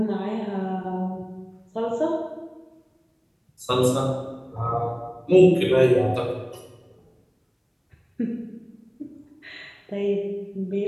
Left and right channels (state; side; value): identical; both; correlation 1.00